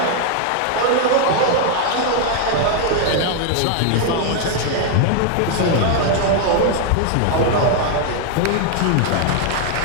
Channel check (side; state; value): both; different; correlation 0.00